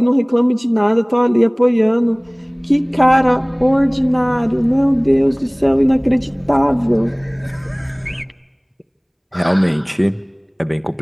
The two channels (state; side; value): identical; both; correlation 1.00